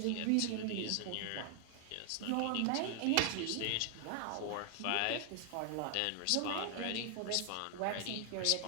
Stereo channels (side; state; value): both; different; correlation 0.00